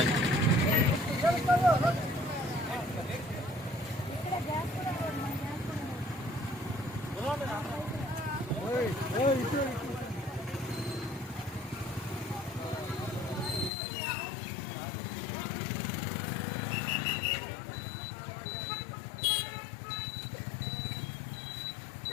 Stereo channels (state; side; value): drops out; right; at 13.7 s